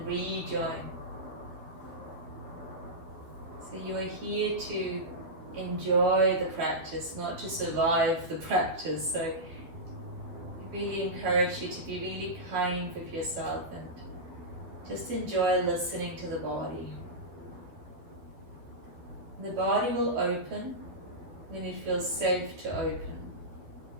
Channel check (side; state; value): left; late; 12 ms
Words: rejoin. So you are here to enjoy the practice, not to survive the practice. So I really encourage you to be really kind with yourself and just enjoy listening to the body. The body will open when it feels safe to open.